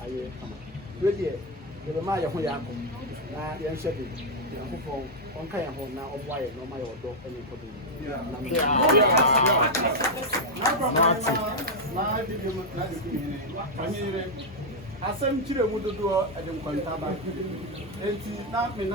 ayɛ kama deɛ yɛbɛma yɛ ho yɛ akɔ na yɛnhyɛ de Nyankopɔn ɔnka yɛn ho na ɔmmoa yɛ na ɔma yɛ ɔdɔ ne nkɔdɔ asɛm kyerɛ mu dodoɔ ɛde nkɔntaba enti na me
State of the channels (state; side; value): normal; both; correlation -0.01